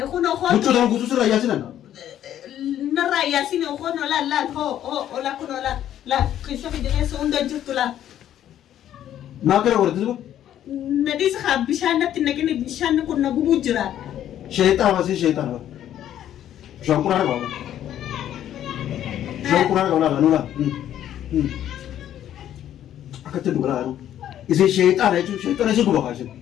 أخوان وتشو ده كوسوس لا ياسين نرى ياسين أخوان لا هو لا كنا لا كيف في جنة سوندا جت لا ما كره ورد أزوبا نديس خاب بيشان نتنقل بيشان كنا بوجرا شيطان واسي شيطان شو كورا ولا شو كورا ولا نولا أكتر دولا أنا إذا شيطان هيجو شيطان هيجو بقاشين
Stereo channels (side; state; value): right; quieter; 11.3 dB